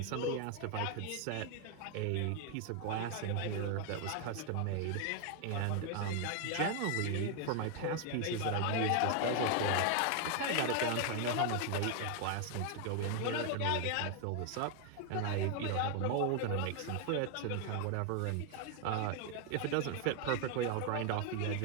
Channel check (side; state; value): both; different; correlation 0.00